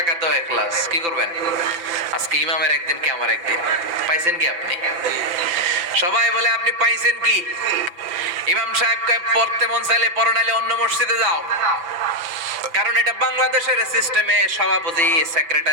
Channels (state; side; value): late; left; 5.9 ms